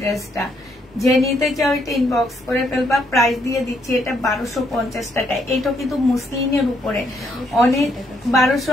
যে নিতে চাও এটা ইনবক্স করে ফেলবা। প্রাইস দিয়ে দিচ্ছি এটা 1250 টাকা। এটা কিন্তু মুসলিনের উপরে, অনেক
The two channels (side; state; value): both; normal; correlation 0.73